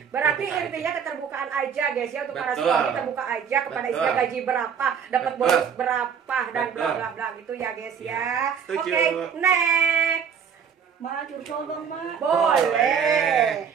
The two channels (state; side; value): quieter; left; 7.2 dB